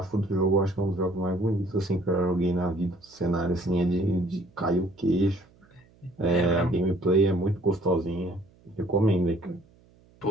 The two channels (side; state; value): right; noise; hum, 30 dB below the sound